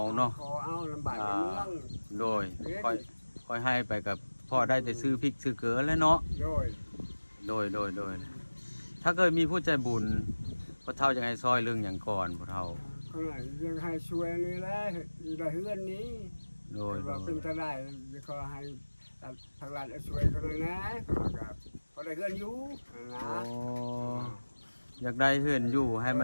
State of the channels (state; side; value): inverted; both; correlation -1.00